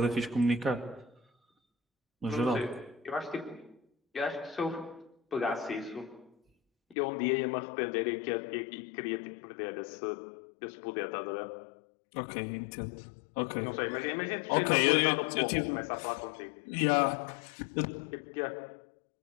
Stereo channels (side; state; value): right; drops out; at 7.0 s